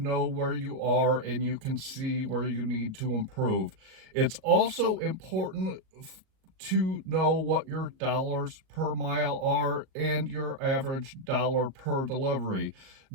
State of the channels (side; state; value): left; late; 38 ms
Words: where you are and you can see where you need to improve. It's also important to know what your dollars per mile are and your average dollar per delivery.